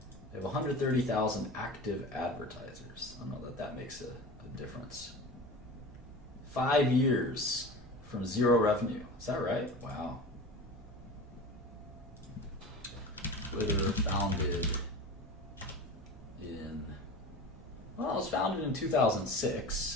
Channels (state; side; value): normal; both; correlation 0.33